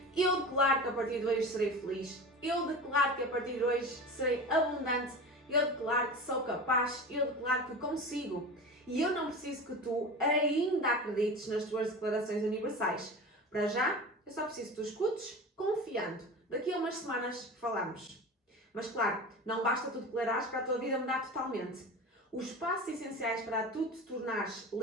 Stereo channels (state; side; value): normal; both; correlation 0.32